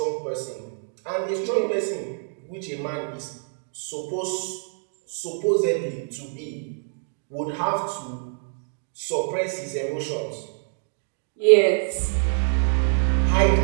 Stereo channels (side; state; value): left; silent; digital silence